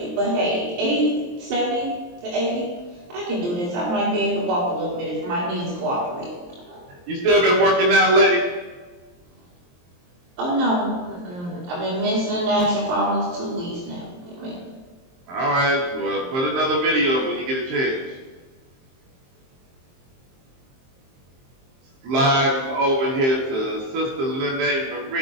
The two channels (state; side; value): late; left; 23 ms